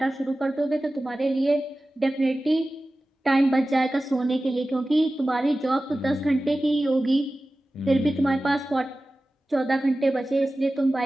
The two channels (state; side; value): normal; both; correlation 0.96